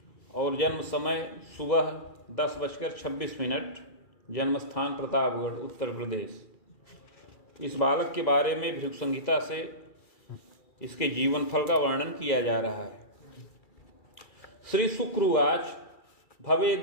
और जन्म समय सुबह 10:26। जन्म स्थान प्रतापगढ़, उत्तर प्रदेश। इस बालक के बारे में भृगु संहिता से इसके जीवन फल का वर्णन किया जा रहा है। श्री शुक्रवाच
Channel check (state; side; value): late; right; 2.3 ms